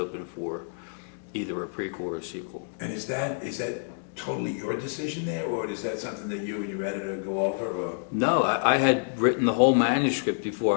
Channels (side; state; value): right; silent; digital silence